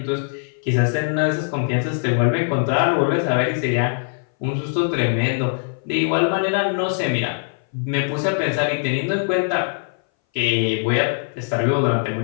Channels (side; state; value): right; silent; 60 dB below the other